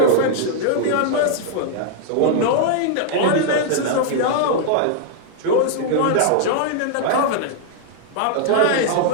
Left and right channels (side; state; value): both; different; correlation -0.01